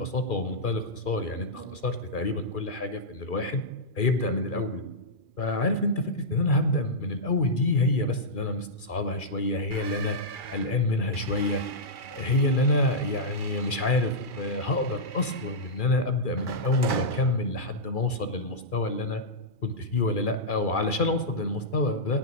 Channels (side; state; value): right; late; 2.4 ms